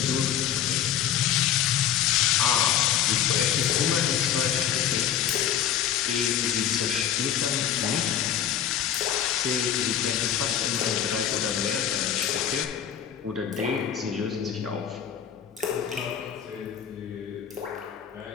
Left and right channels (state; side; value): quieter; right; 9.6 dB